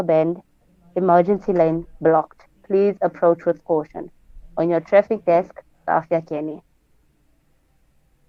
Bend. Emergency lane blocked. Please approach with caution. On your traffic desk, Safia Kenny.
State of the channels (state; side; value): identical; both; correlation 1.00